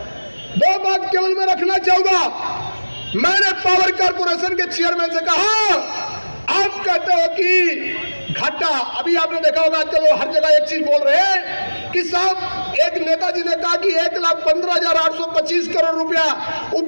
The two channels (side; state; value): both; inverted; correlation -1.00